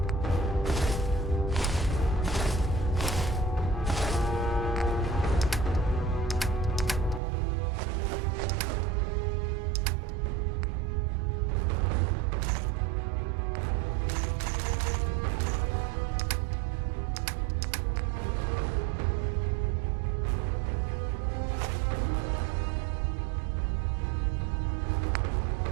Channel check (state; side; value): drops out; left; at 7.2 s